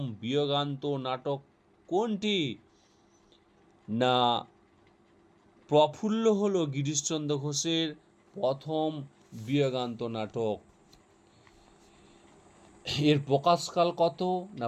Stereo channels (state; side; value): identical; both; correlation 1.00